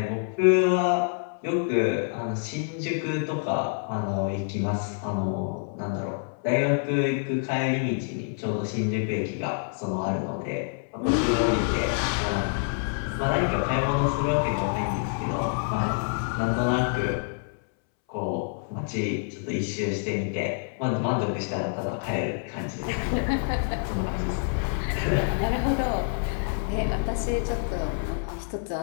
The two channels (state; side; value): silent; right; 60 dB below the other